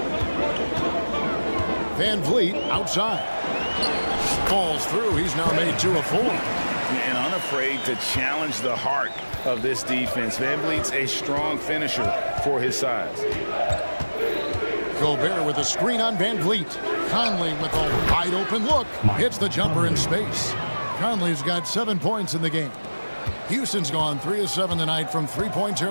Van Vliet outside. Falls through. He's now made 2 of 4. And unafraid to challenge the heart of this defense. Van Vliet's a strong finisher for his size. Gobert with a screen on Van Vliet. Conley with a wide open look. Hits the jumper in space. Conley's got 7 points in the game. Houston's gone 3 of 7 tonight from three-point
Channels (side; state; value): both; inverted; correlation -1.00